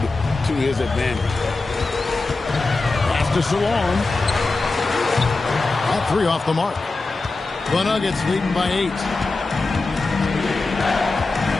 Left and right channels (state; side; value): quieter; right; 3.5 dB